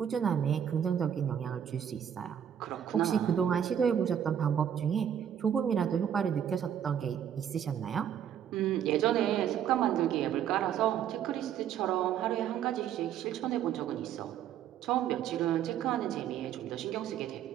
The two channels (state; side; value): quieter; left; 9.3 dB